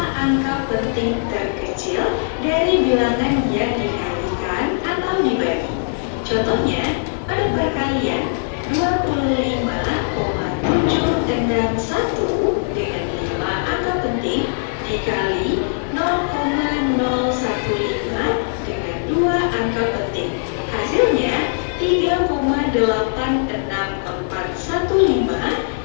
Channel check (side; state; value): right; silent; 66 dB below the other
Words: angka penting terkecil dari bilangan yang dikalikan atau dibagi. Contohnya, pada perkalian 25,761 dengan 5 angka penting dikali 0,015 dengan 2 angka penting. Hasilnya 3,86415